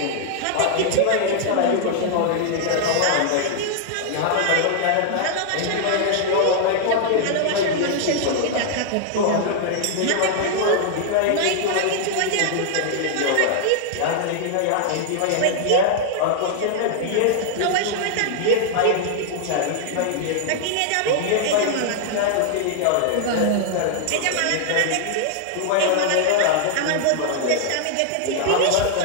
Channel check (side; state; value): both; different; correlation -0.01